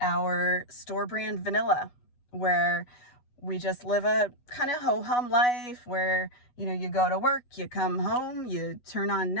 our store brand vanilla, where we just live a kind of ho-hum life where, you go to work, you come home, you turn on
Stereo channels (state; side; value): late; right; 8.2 ms